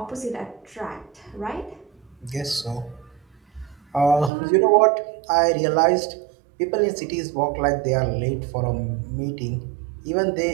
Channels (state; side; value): drops out; left; at 4.3 s